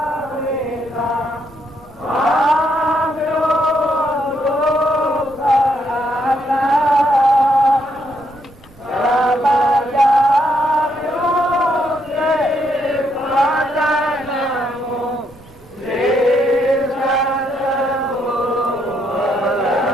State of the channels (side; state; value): right; noise; rumble, 26 dB below the sound